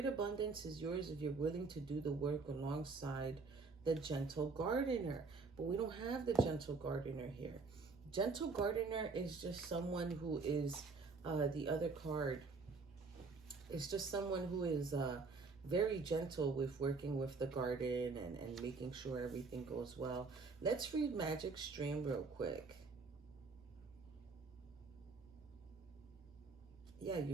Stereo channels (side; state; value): left; quieter; 4.3 dB